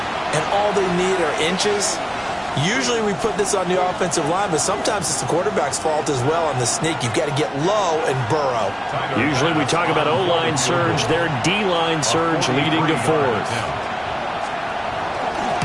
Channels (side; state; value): both; identical; correlation 1.00